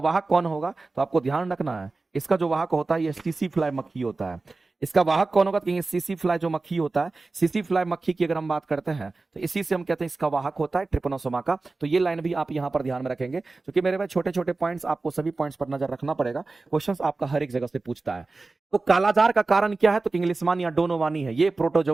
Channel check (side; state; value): left; quieter; 3.6 dB